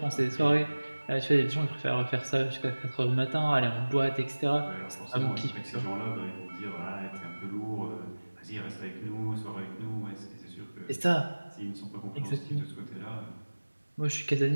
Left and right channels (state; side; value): inverted; both; correlation -1.00